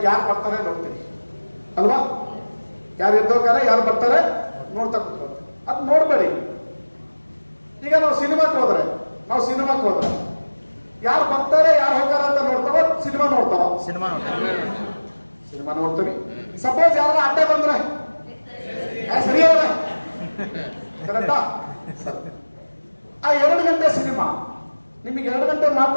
ಯಾರು ಬರ್ತಾರೆ ನೋಡ್ತೀರಿ ಅಲ್ವಾ? ಯಾರು ಎದ್ದೋಗ್ತಾರೆ, ಯಾರು ಬರ್ತಾರೆ ನೋಡ್ತಾ ಕೂತ್ಕೊಳ್ತೀವಿ. ಅದು ನೋಡ್ಬೇಡಿ. ಈಗ ನಾವು ಸಿನಿಮಾಕ್ಕೆ ಹೋದ್ರೆ ಯಾರು ಬರ್ತಾರೆ, ಯಾರು ಹೋಗ್ತಾರೆ ಅಂತ ನೋಡ್ತಾವ, ಸಿನಿಮಾ ನೋಡ್ತೀವಿ. ಸಪೋಸ್ ಯಾರು ಅಡ್ಡ ಬಂದ್ರೆ ಸರಿ ಕರೆಕ್ಟಾ? ಆ 2 ಗಂಟೆ ಸಿನಿಮಾ ನಿಮಗೆ 2 ಗಂಟೆ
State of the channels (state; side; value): inverted; both; correlation -1.00